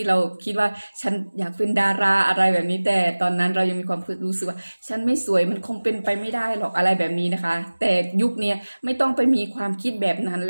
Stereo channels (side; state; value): both; inverted; correlation -1.00